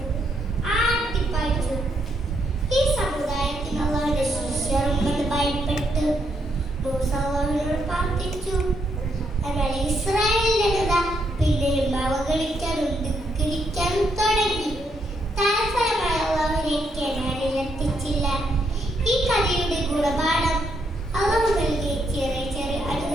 ആട്ടിപ്പായിച്ചു. ഈ സമുദായത്തിന് അല്ലാഹുവിന്റെ ശിഷ്യരുണ്ടെന്ന് ഭയപ്പെട്ട് മൂസ അല്ലാഹുവിനോട് പ്രാർത്ഥിച്ചു. എന്നാൽ ഇസ്രായേലിന്റെ ജനത പിന്നെയും അവഗണിക്കാനും ധിക്കരിക്കാനും തുടങ്ങി. തൽഫലമായി അല്ലാഹുവിനെ കനാനിലെത്തിച്ചില്ല. ഈ കഥയുടെ ഗുണപാഠം അല്ലാഹു നൽകിയ ചെറിയ ചെറിയ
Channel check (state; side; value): normal; both; correlation 0.77